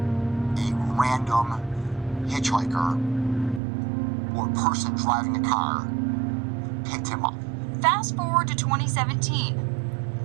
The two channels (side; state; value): left; drops out; at 3.6 s